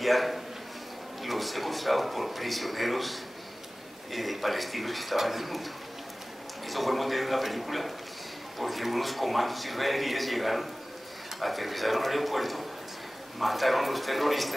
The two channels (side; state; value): both; normal; correlation 0.98